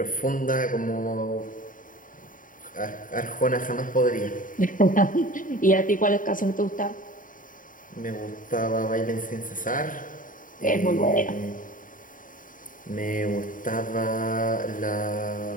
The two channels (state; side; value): late; right; 0.39 ms